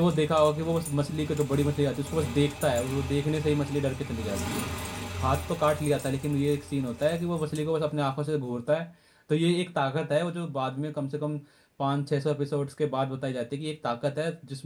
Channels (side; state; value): both; identical; correlation 1.00